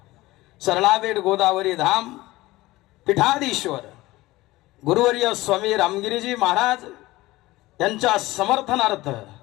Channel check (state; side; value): quieter; right; 18.7 dB